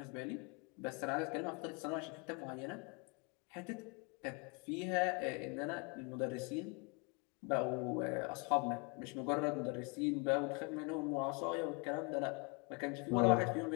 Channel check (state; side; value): quieter; right; 31.4 dB